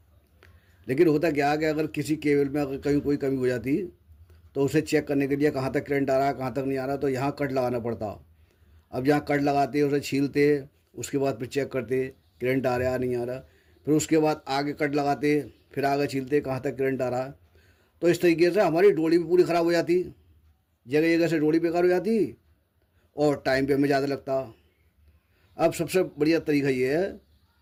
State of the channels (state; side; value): identical; both; correlation 1.00